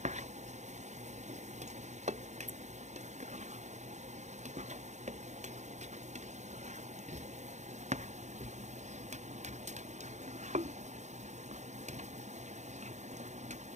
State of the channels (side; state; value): left; late; 0.34 ms